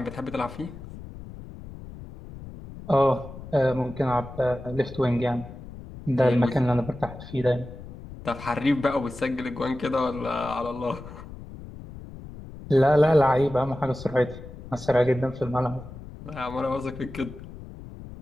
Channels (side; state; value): left; noise; rumble, 14 dB below the sound